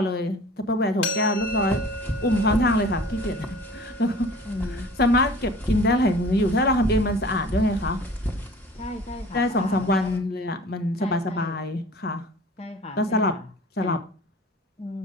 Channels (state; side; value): normal; both; correlation 0.45